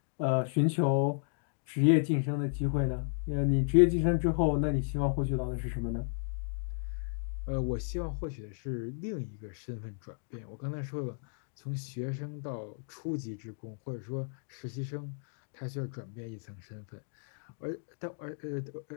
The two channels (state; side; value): silent; right; digital silence